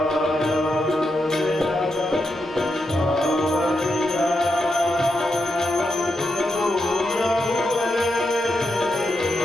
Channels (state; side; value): normal; both; correlation 0.84